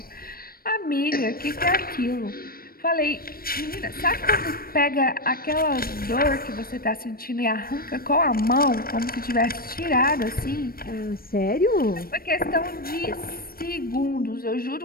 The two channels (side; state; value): right; late; 0.43 ms